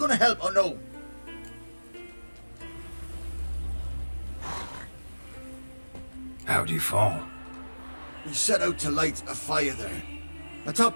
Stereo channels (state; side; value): inverted; both; correlation -1.00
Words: help or no? How'd you fall? We set out to light a fire there,